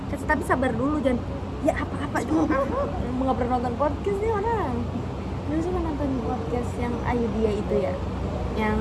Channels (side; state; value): both; identical; correlation 1.00